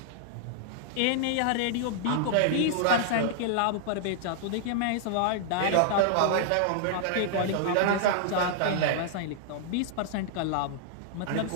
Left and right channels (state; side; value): different; both; correlation -0.01